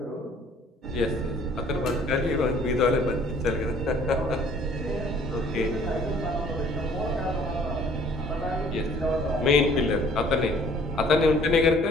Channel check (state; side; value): normal; both; correlation 0.56